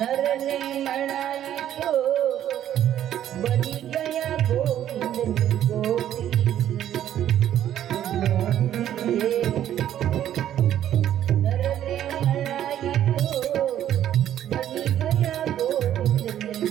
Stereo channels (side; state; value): left; quieter; 11.2 dB